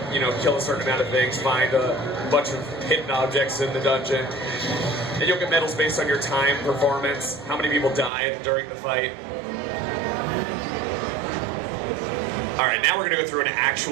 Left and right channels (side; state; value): left; drops out; at 8.1 s